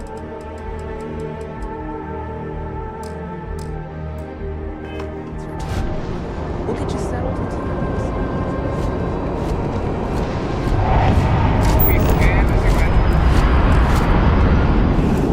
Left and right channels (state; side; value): identical; both; correlation 1.00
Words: We'll get you settled into your